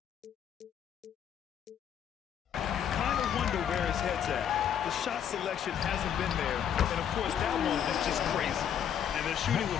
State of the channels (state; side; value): quieter; right; 9.0 dB